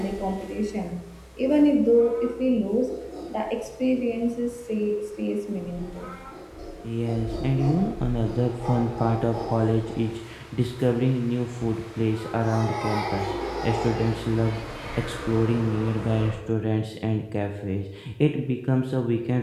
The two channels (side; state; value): both; identical; correlation 1.00